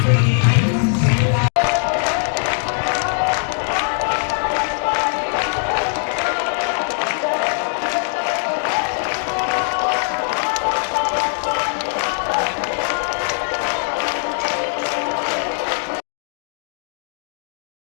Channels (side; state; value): right; silent; digital silence